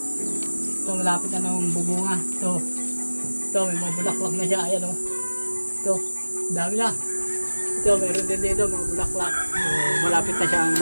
Ito, malapit na ng bunga. Ito, may mga bulaklak na siya. Ayan o. Ito, dami na. Ito, meron din dito mga bulaklak. So, malapit na siyang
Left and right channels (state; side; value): inverted; both; correlation -1.00